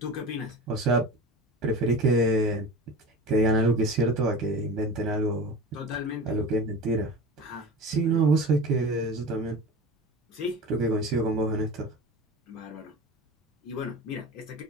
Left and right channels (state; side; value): normal; both; correlation 0.33